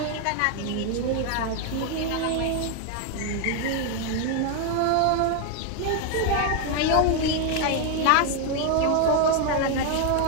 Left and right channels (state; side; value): different; both; correlation 0.01